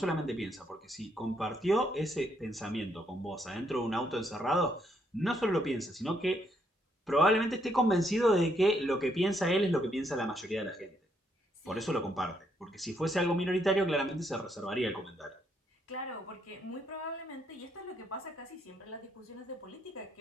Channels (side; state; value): both; normal; correlation 0.74